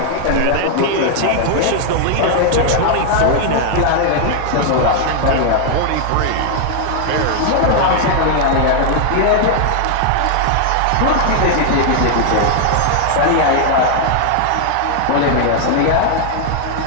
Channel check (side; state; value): both; different; correlation 0.00